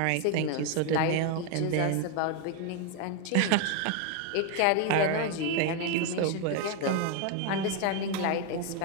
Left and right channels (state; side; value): different; both; correlation 0.01